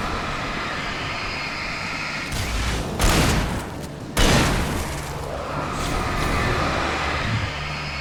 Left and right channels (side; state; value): both; identical; correlation 1.00